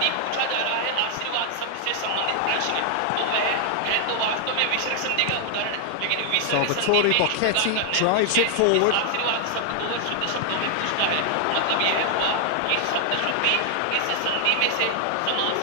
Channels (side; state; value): both; different; correlation 0.00